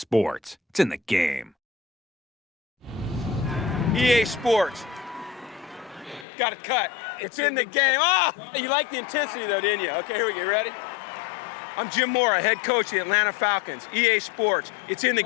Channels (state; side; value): drops out; right; at 6.2 s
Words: It's in the game. EA Sports. Got it cut. It's in the game. Ah! You like the intensity, though, didn't you? Okay, here we go. Ready? I'm Jim Mora, head coach of the Atlanta Falcons. EA Sports. It's in the